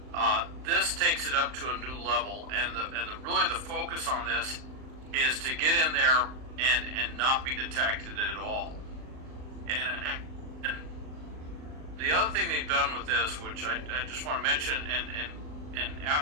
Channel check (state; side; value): late; left; 39 ms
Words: This takes it up to a new level, and really the focus on this is to get in there and not be detected at all. And the other thing they've done with this, which I just want to mention, and